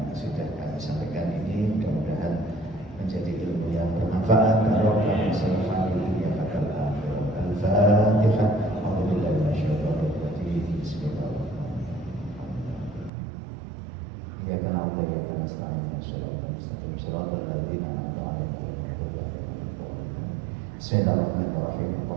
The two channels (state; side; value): drops out; left; at 13.1 s